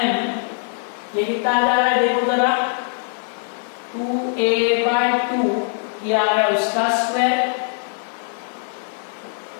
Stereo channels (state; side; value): silent; right; 65 dB below the other